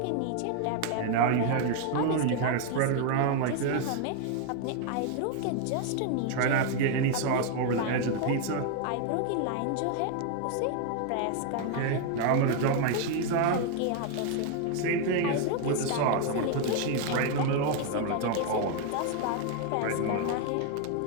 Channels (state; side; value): different; both; correlation 0.01